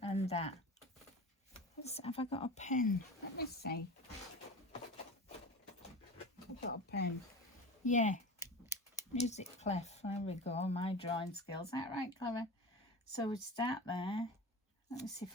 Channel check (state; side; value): normal; both; correlation 0.32